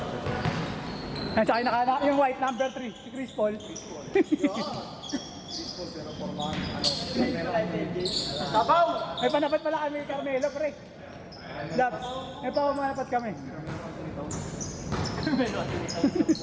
Yan, tsaka yung white, number 3, si Chris Paul. Sabaw! May panapat pala kami, Carmelo, pre. Labs, may pamanapat kami.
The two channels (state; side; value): identical; both; correlation 1.00